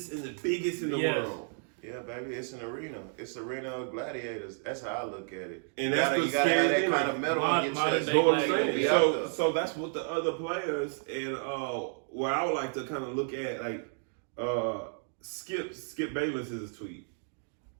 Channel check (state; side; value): silent; left; 57 dB below the other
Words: and the biggest in the Yes. world. Yeah, baby, it's an arena. It's an arena of gladiators. That's how I look at it. And that's you what's gotta have scary that thing, kind like, of metal on your modern chest. day That's what I'm gladiator saying. be out there. So that's what the other players and where I would like to kind of look at, like Skip Bayless is a tweet.